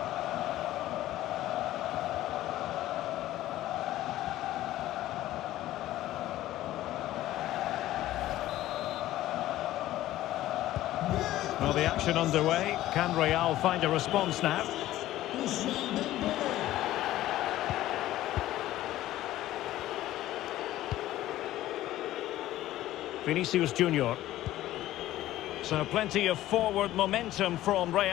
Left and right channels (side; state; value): right; quieter; 14.7 dB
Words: Well, the action underway. Can Real find a response now? Ousmane Dembélé. Viní Jr. So plenty of forward momentum from